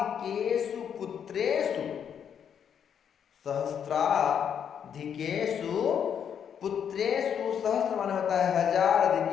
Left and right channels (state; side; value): quieter; right; 8.2 dB